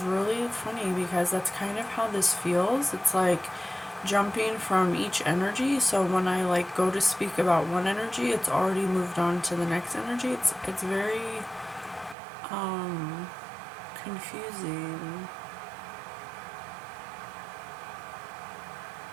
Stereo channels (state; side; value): drops out; left; at 12.2 s